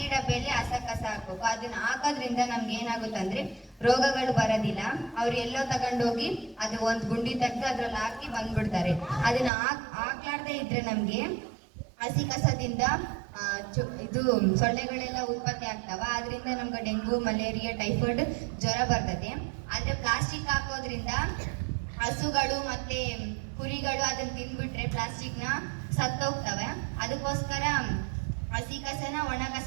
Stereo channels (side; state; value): left; drops out; at 9.5 s